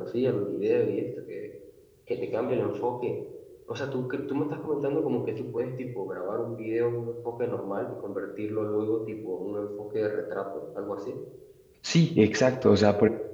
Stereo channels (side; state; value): both; identical; correlation 1.00